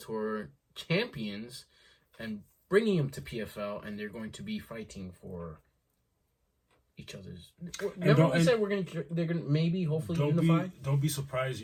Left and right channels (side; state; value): both; identical; correlation 1.00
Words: champions and bringing them to PFL, and they're going to be fighting for each other's. Remember we said they're gonna maybe hopefully unify. Don't be surprised